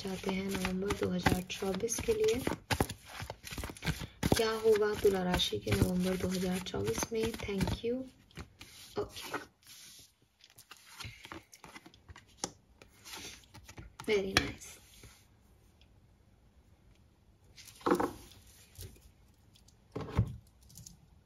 हैं नवंबर 2024 के लिए। क्या होगा तुला राशि के नवंबर 2024 में। Thank you. Okay, very nice.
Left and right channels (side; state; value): both; identical; correlation 1.00